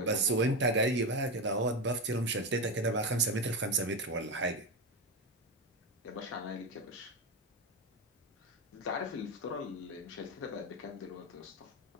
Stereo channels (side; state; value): both; normal; correlation 0.14